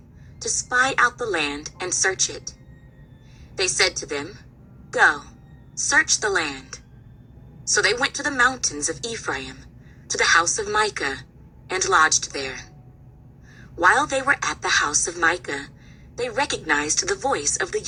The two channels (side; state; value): both; identical; correlation 1.00